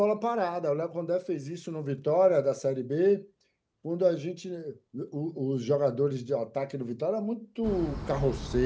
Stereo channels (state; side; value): identical; both; correlation 1.00